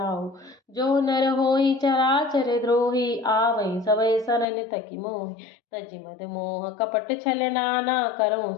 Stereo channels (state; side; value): drops out; right; at 4.5 s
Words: जो नर होई चराचर द्रोही, आवै सबय सरन तकि मोहि। तजि मद मोह कपट छल नाना, करऊँ